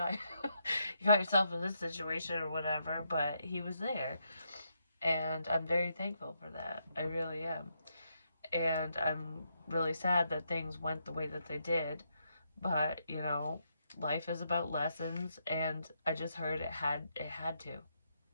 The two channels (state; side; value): inverted; both; correlation -0.79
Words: yourself in this situation or whatever, but he was there. And I'm very thankful for that. I really am. And I'm really sad that things went the way that they did. But, you know, life is about lessons, and I just heard it had to.